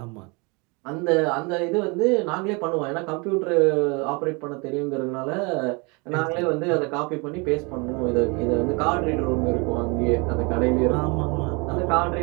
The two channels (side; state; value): left; quieter; 29.8 dB